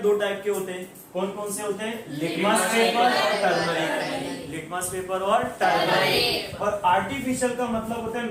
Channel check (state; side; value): identical; both; correlation 1.00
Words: टाइप के होते हैं। कौन कौन से होते हैं? लिटमस पेपर और टर्मरिक। लिटमस पेपर और टर्मरिक। और आर्टिफिशियल का मतलब होता है